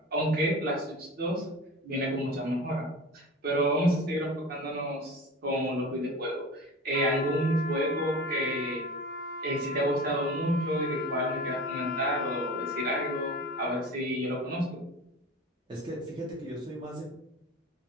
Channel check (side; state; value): both; normal; correlation 0.34